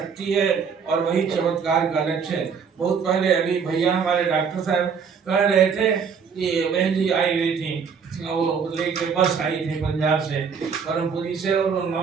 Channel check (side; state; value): left; quieter; 6.3 dB